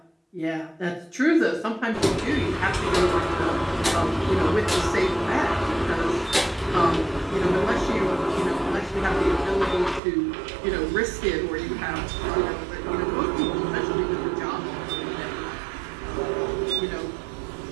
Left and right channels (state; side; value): drops out; left; at 10.0 s